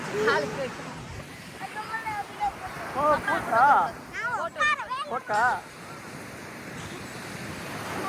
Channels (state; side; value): identical; both; correlation 1.00